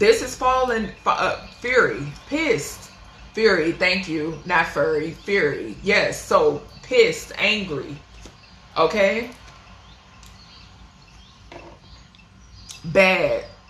is fallen, fury, pissed, fury, thank you, not furry, fury, yes, so pissed, angry, okay, bad,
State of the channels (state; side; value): identical; both; correlation 1.00